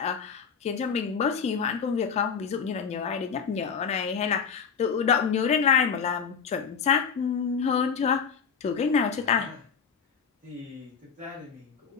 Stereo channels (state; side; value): quieter; right; 6.4 dB